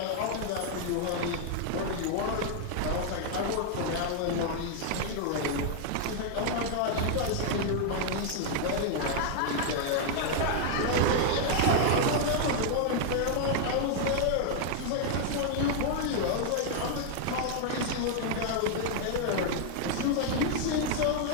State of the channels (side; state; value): both; different; correlation 0.00